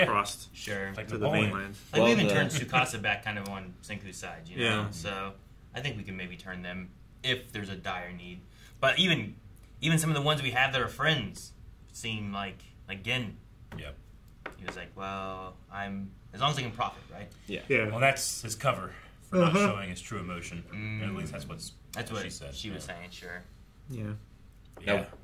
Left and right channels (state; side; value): identical; both; correlation 1.00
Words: across Sure. Like to the Napoleon. mainland. Like, we Well, even the- turned Tsukasa back kind of on Senku's side, you know? Yeah. So I think we can maybe turn them if there's a dire need. But even some of the ones we have that are friends seem like Gin. Yep. He was like, well, as long as I can profit, right? Yeah. Yeah. Well, that's his cover for not showing his true emotion. Mm. At least that's what That's what she said. she was saying, sure. Yeah. Now,